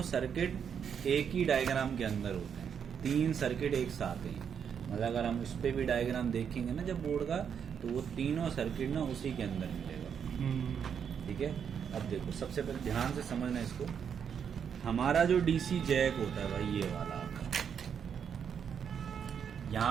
सर्किट एक ही डायग्राम के अंदर होते हैं। 3 सर्किट एक साथ हैं। मतलब अगर हम उस पर भी डायग्राम देखेंगे ना जब बोर्ड का, तो वो तीनों सर्किट ना उसी के अंदर मिलेगा। ठीक है, अब देखो सबसे पहले ध्यान से समझना इसको। हमारा जो डीसी जैक होता है भाई, ये वाला आपका,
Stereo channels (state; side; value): quieter; left; 7.6 dB